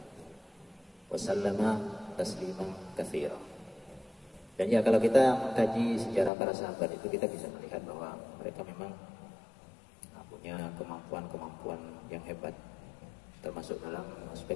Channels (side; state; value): right; drops out; at 6.3 s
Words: Wasallama tasliman katsira. Dan ya kalau kita mengkaji sejarah para sahabat itu, kita bisa melihat bahwa mereka memang punya kemampuan-kemampuan yang hebat, termasuk dalam